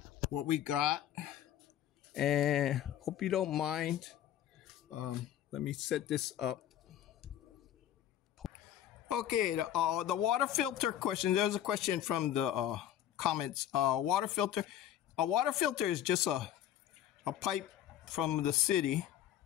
what we got, and hope you don't mind. Let me set this up. Okay, the water filter question. There's a question from the comments. Water filter. A water filter is just a pipe from the city,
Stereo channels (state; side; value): quieter; right; 11.3 dB